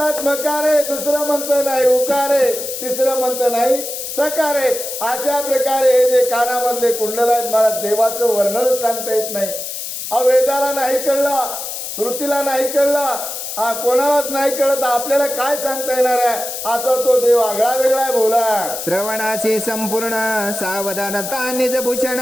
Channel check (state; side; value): noise; left; hiss, 6 dB below the sound